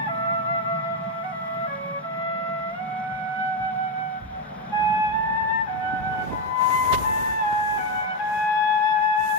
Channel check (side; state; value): both; normal; correlation 0.08